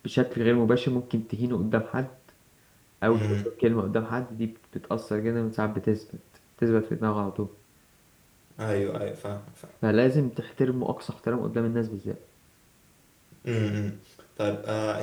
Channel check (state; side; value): identical; both; correlation 1.00